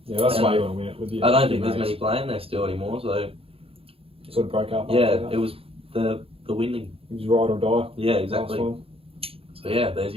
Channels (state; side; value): late; left; 0.27 ms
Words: Yeah, that's why you want to win it with you. I don't think there's many playing there still anymore, so sort of broke up. Yeah, it was the winning. It was ride or die. Yeah, exactly. So yeah, there's